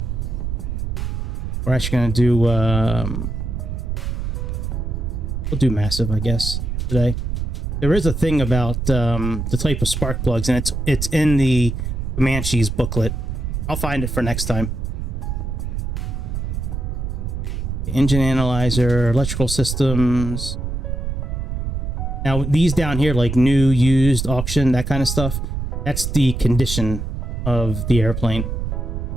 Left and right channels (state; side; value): noise; right; rumble, 3 dB below the sound